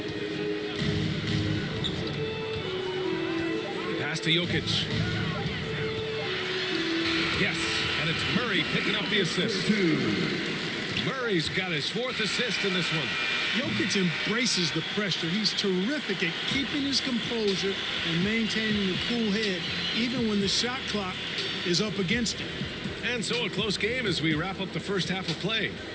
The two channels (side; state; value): both; identical; correlation 1.00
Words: Pass to Jokic. Yes, and it's Murray picking up the assist. Murray's got his 4th assist in this one. Jokic embraces the pressure. He's terrific at keeping his composure and maintaining a cool head, even when the shot clock is up against him. And so a close game as we wrap up the first half of play.